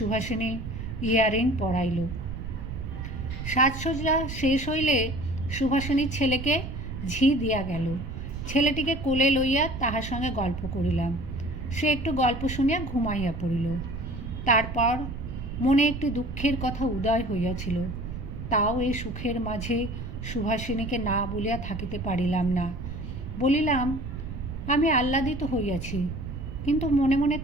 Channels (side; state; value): right; noise; rumble, 7 dB below the sound